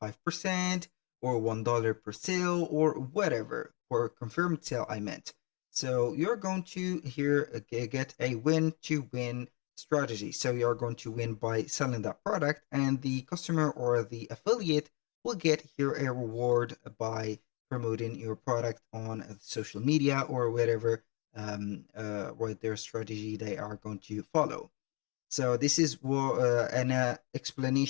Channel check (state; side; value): quieter; right; 31.5 dB